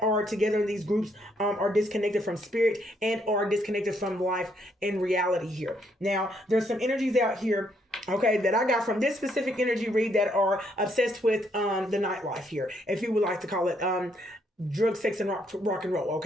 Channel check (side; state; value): both; normal; correlation 0.72